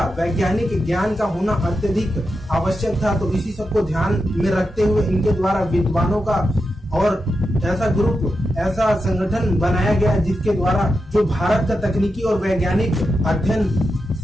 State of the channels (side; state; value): both; normal; correlation 0.88